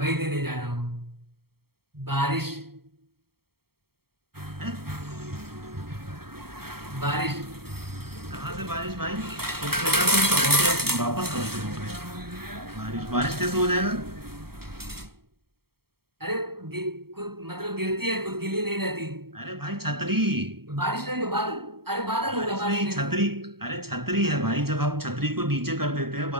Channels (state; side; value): late; left; 0.95 ms